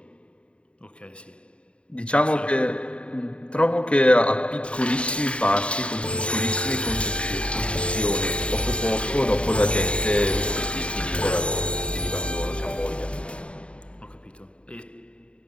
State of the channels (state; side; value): late; right; 0.058 ms